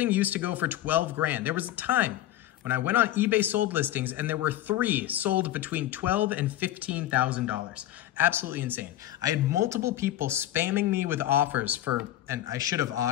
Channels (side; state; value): right; quieter; 13.6 dB